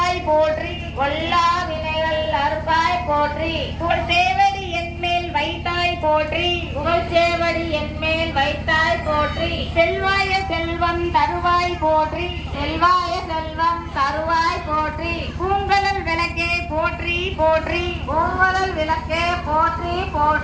போற்றி. கொல்லா வினைகள் அறுப்பாய் போற்றி. புகழ் சேவடி என்மேல் வைத்தாய் போற்றி. புகழ் சேவடி என்மேல் வைத்தாய் போற்றி. செல்வாய செல்வம் தருவாய் போற்றி. செல்வாய செல்வம் தருவாய் போற்றி. பூங்கலல் விளக்கே போற்றி போற்றி. பூங்கலல் விளக்கே போற்றி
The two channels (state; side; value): identical; both; correlation 1.00